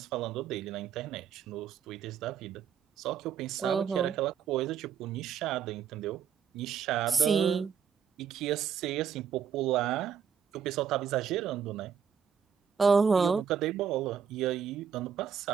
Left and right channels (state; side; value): quieter; left; 7.4 dB